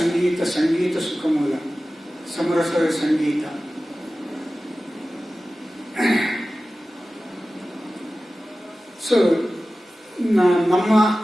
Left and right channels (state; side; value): normal; both; correlation 0.96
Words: ಸಂಗೀತ ಸುಖ ಮೂಲ, ಸಮರಸದ ಸಂಗೀತ. ಸೊ ನಮ್ಮ